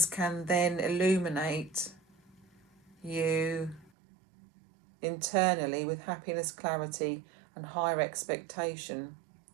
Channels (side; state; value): left; drops out; at 3.9 s